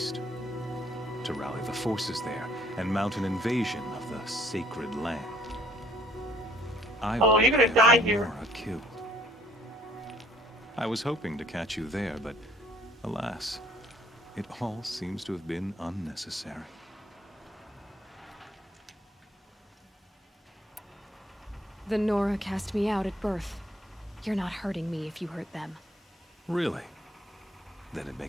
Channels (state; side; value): normal; both; correlation 0.60